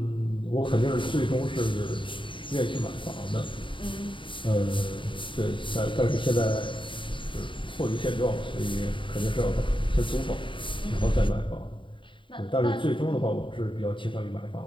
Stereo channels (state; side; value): late; right; 0.24 ms